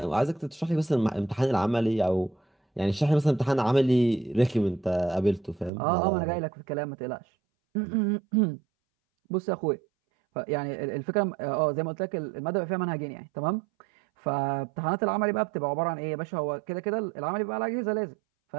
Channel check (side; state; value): left; drops out; at 5.7 s